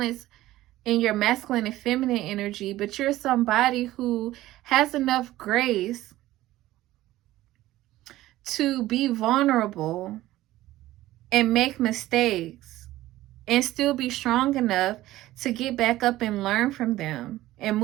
in your masculine and feminine energy, but you're somebody who has enough grace to be vulnerable and make mistakes and still be strong enough to get back up and learn from them and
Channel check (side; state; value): left; quieter; 15.8 dB